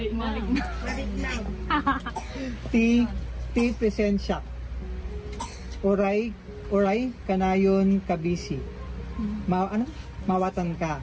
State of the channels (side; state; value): both; identical; correlation 1.00